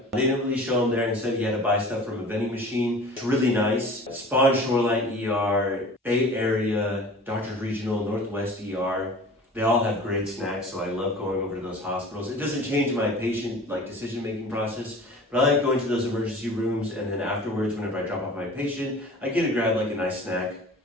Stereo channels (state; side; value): normal; both; correlation 0.42